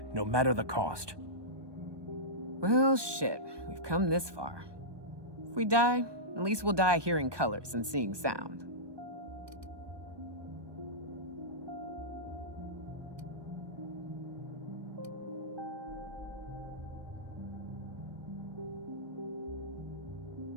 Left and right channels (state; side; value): late; left; 1.2 ms